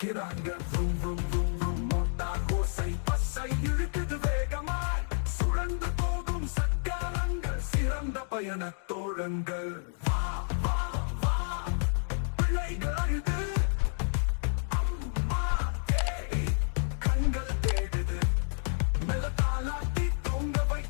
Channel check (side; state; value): right; silent; digital silence